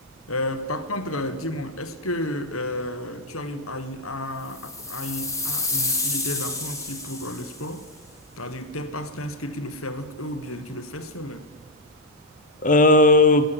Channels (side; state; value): both; normal; correlation 0.00